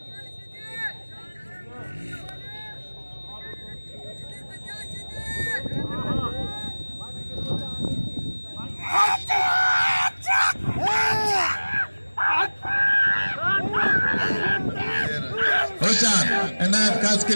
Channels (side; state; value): both; inverted; correlation -1.00